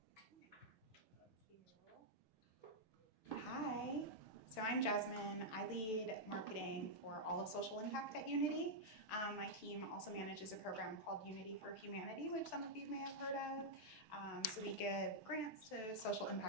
Hi, so I'm Jasmin. I lead marketing for all of social impact at Unity. My team also manages a program called Unity for Humanity, which some of you may have heard of. So we give grants to social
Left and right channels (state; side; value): late; right; 6.3 ms